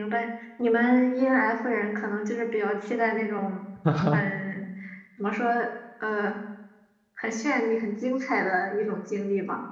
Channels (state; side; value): identical; both; correlation 1.00